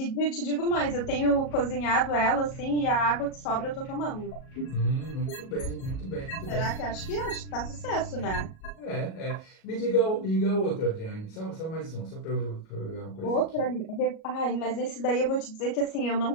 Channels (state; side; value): late; right; 37 ms